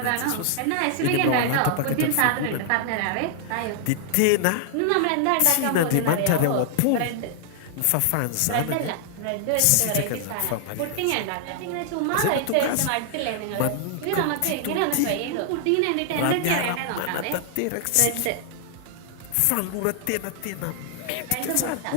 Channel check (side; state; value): both; different; correlation -0.01